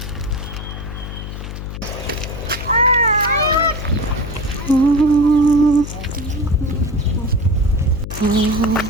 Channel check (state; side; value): noise; left; hum, 8 dB below the sound